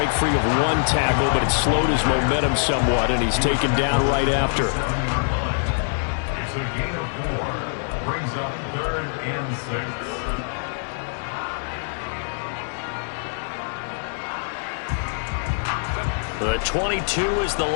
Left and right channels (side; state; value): right; silent; digital silence